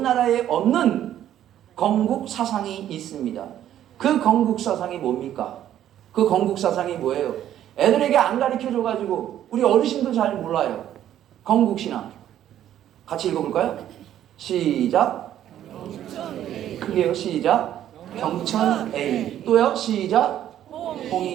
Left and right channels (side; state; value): left; quieter; 11.4 dB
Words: 나라에 없는 건국 사상이 있습니다. 그 건국 사상이 뭡니까? 그 건국 사상이 뭐예요? 애들에게 안 가르쳐줘가지고 우리 어르신도 잘 몰라요. 건국 신화. 같이 읽어볼까요? 시작. 크게요. 시작. 경천A. 또요. 시작.